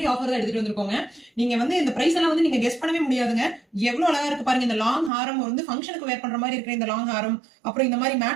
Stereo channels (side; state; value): left; drops out; at 5.1 s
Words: ஆஃபர் தான் எடுத்துட்டு வந்திருக்கோங்க. நீங்க வந்து இந்த பிரைஸ் எல்லாம் வந்து நீங்க கெஸ் பண்ணவே முடியாதுங்க. எவ்வளவு அழகா இருக்கு பாருங்க. இந்த லாங் ஹாரம் வந்து ஃபங்க்ஷனுக்கு வேர் பண்ற மாதிரி இருக்கிற இந்த லாங் ஹாரம், அப்புறம் இந்த மாதிரி